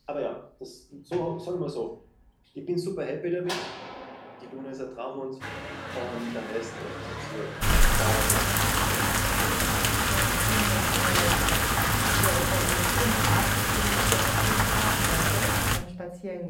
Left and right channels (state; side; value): identical; both; correlation 1.00